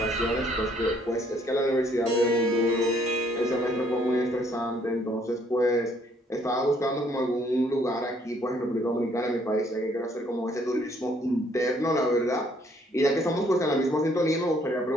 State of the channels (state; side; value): normal; both; correlation 0.65